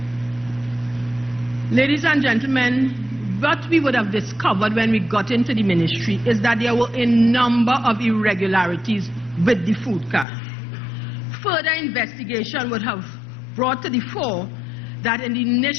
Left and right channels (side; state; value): right; drops out; at 10.2 s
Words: Ladies and gentlemen, what we would have discovered when we got into the ministry is that there were a number of irregularities with the food card. Further investigation would have brought to the fore that in the